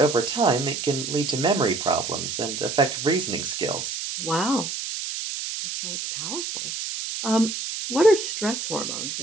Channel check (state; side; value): noise; right; hiss, 5 dB below the sound